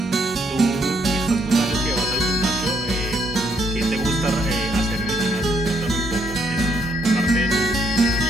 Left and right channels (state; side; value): normal; both; correlation 0.71